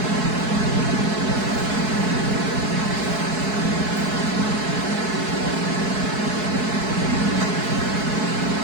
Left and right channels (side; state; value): left; late; 4.7 ms